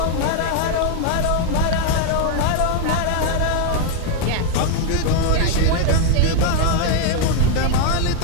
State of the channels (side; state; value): both; different; correlation 0.00